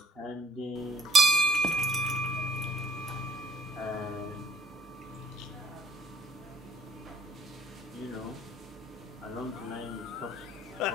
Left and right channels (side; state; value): both; normal; correlation 0.59